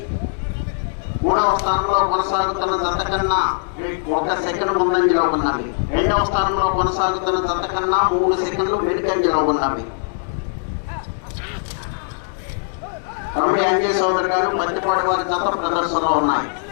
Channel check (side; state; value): right; silent; digital silence